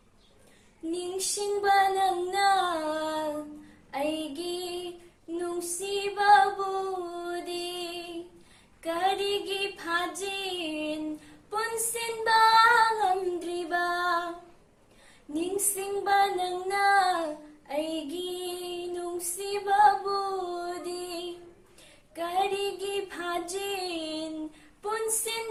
ꯅꯤꯡꯁꯤꯡꯕ ꯅꯪꯅ ꯑꯩꯒꯤ ꯅꯨꯡꯁꯤꯕꯕꯨꯗꯤ ꯀꯔꯤꯒꯤ ꯐꯥꯖꯤꯟ ꯄꯨꯟꯁꯤꯟꯕ ꯉꯝꯗ꯭ꯔꯤꯕ ꯅꯤꯡꯁꯤꯡꯕ ꯅꯪꯅ ꯑꯩꯒꯤ ꯅꯨꯡꯁꯤꯕꯕꯨꯗꯤ ꯀꯔꯤꯒꯤ ꯐꯥꯖꯤꯟ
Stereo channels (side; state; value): both; identical; correlation 1.00